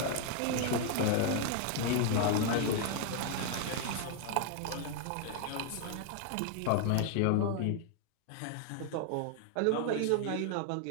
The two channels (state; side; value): different; both; correlation 0.00